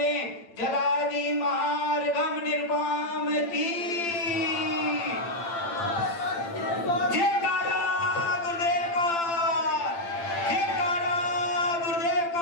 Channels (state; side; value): late; right; 8.8 ms